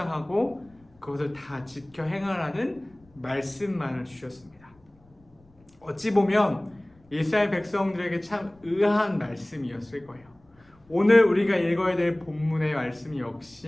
그것을 다 지켜 행하라는 말씀만을 주셨습니다. 어찌 보면 이스라엘 백성들에게 참 의아한 말씀이었을 거예요. 오늘 우리가 읽어야 될 본문의 말씀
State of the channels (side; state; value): left; noise; rumble, 30 dB below the sound